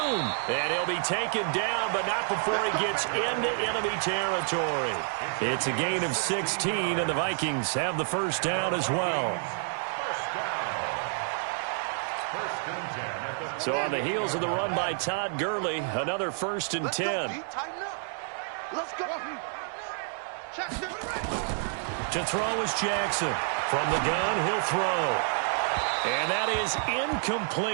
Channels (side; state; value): left; silent; 58 dB below the other